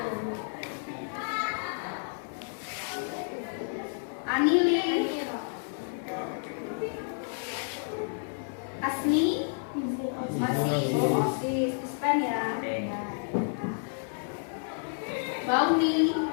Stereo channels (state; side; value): silent; right; digital silence